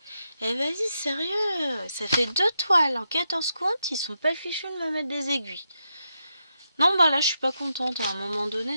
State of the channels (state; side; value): inverted; both; correlation -0.84